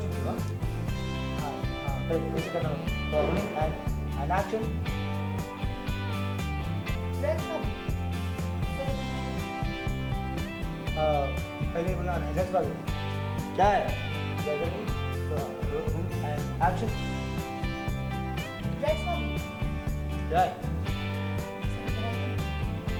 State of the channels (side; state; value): both; identical; correlation 1.00